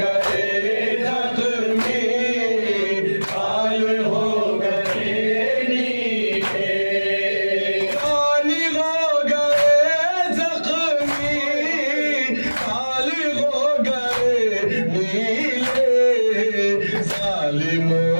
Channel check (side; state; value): both; inverted; correlation -1.00